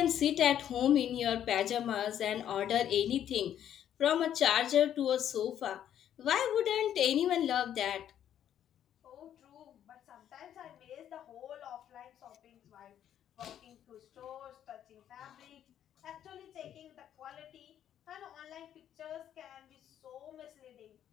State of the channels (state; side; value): quieter; right; 10.3 dB